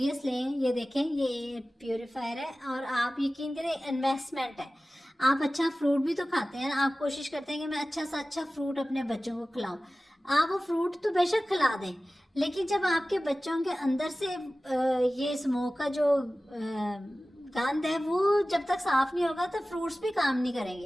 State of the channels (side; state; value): both; normal; correlation 0.96